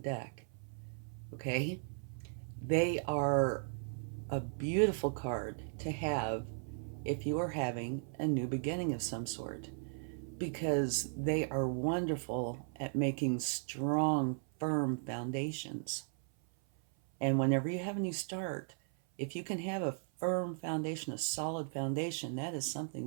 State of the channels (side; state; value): left; silent; 53 dB below the other